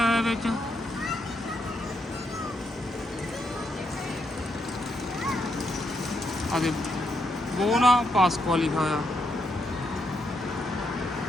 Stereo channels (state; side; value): normal; both; correlation 0.79